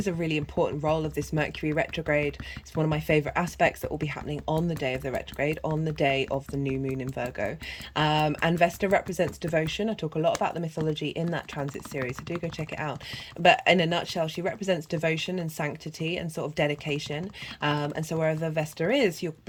a really important role of this Mercury retrograde. It's one of my favorite aspects that will be happening on the day of the retrograde, on the day of the new moon in Virgo. And Vesta represents devotion. I talk a lot about the mythology in that transit series, so do go check it out. But in a nutshell, she represents devotion and sanctity and sort of dedication. And so wherever Vesta is, you're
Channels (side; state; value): both; identical; correlation 1.00